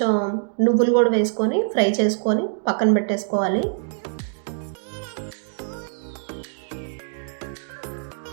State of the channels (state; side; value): silent; left; digital silence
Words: నువ్వులు కూడా వేసుకొని ఫ్రై చేసుకొని పక్కన పెట్టేసుకోవాలి.